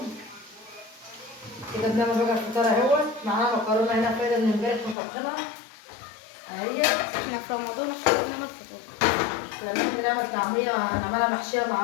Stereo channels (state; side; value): drops out; right; at 5.0 s